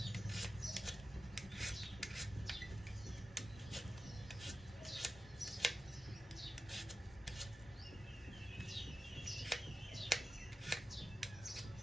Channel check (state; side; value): normal; both; correlation 0.92